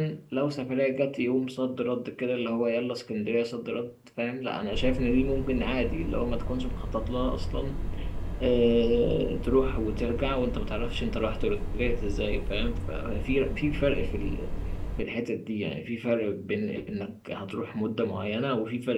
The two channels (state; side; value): identical; both; correlation 1.00